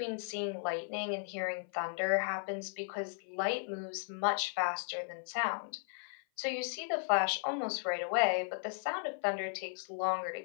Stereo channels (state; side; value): silent; right; 54 dB below the other